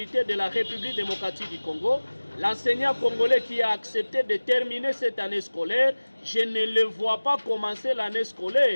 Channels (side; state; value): both; inverted; correlation -1.00